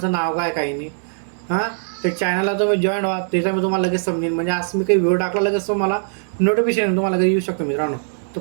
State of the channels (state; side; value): silent; left; digital silence